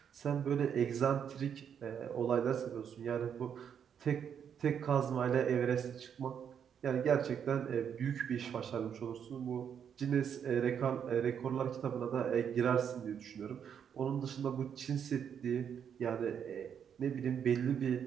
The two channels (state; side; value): quieter; left; 8.0 dB